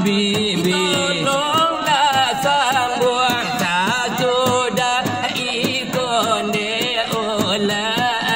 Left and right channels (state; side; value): noise; left; rumble, 27 dB below the sound